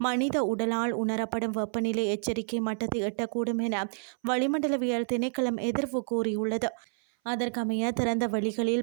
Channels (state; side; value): silent; left; 57 dB below the other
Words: மனித உடலால் உணரப்படும் வெப்பநிலை எச்சரிக்கை மட்டத்தை எட்டக்கூடும் என வளிமண்டலவியல் திணைக்களம் எதிர்வு கூறியுள்ளது. அதற்கமைய திறந்த